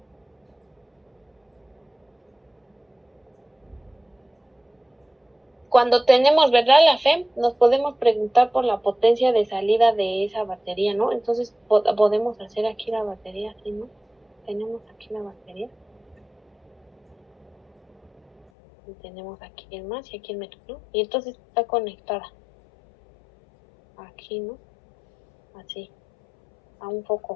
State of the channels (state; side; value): drops out; right; at 18.4 s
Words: Cuando tenemos, ¿verdad? La FEM, nos podemos preguntar por la potencia de salida de esa batería, ¿no? Entonces podemos hacer aquí la batería, así, ¿no? Tenemos aquí la batería. Y tenemos aquí el más y aquí el menos, ¿no? Y entonces está conectada. Aquí, ¿no? Así. A un